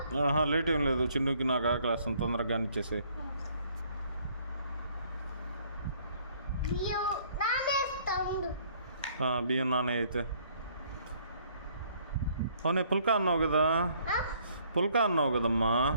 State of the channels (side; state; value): both; inverted; correlation -0.63